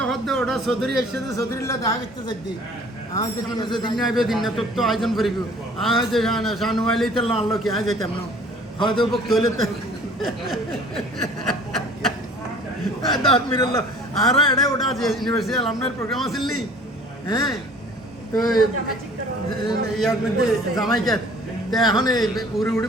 হদ্দে ওটা চৌধুরী এসে চৌধুরীলা দেখা করতে যাচ্ছি আজ দিন আইবে দিন না তোর তো আয়োজন করিব আজ শানুয়াইলেই তো আনলো কি আজ যেতাম না হয়তো বক্ত হইলে তো মিরল আর এটা ওটা আছে ইউনিভার্সিটি আলামনার প্রোগ্রাম আছিল নি হ্যাঁ তো ইয়ার মধ্যে জামাইকে তো এখন উড়ি উড়ি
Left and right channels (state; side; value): normal; both; correlation 0.50